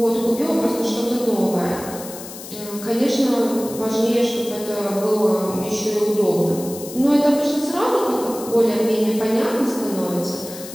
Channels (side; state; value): left; noise; hiss, 13 dB below the sound